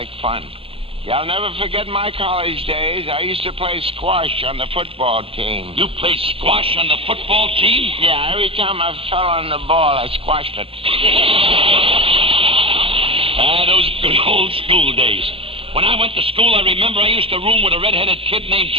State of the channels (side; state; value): left; late; 0.27 ms